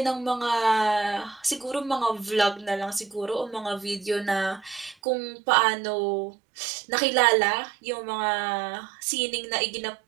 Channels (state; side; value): drops out; left; at 5.0 s